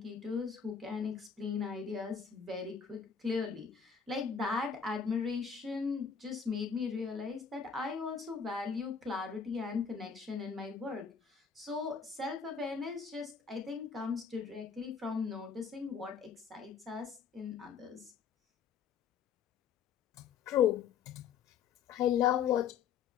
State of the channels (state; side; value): quieter; right; 6.6 dB